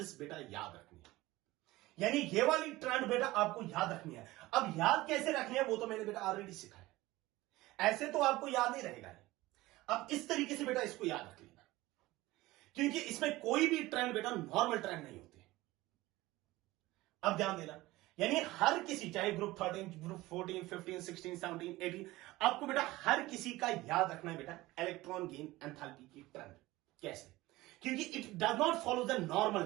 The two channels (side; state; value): left; quieter; 18.7 dB